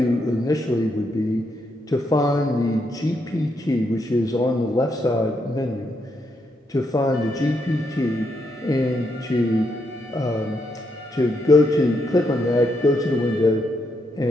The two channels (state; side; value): normal; both; correlation 0.79